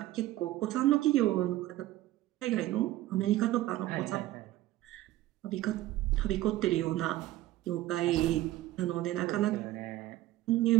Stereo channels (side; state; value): left; quieter; 15.4 dB